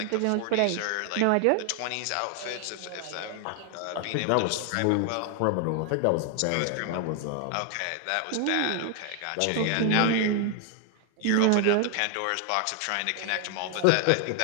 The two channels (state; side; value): different; both; correlation 0.00